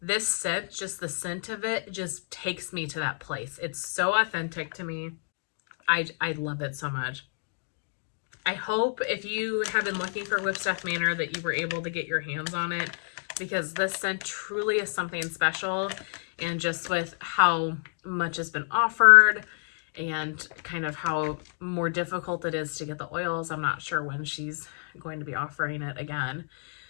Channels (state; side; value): silent; right; 59 dB below the other